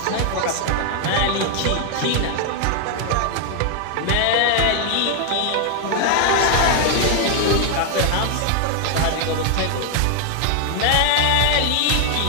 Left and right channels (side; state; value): both; different; correlation 0.00